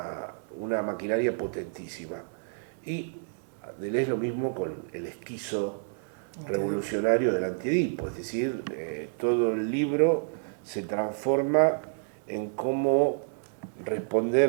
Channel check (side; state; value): left; silent; digital silence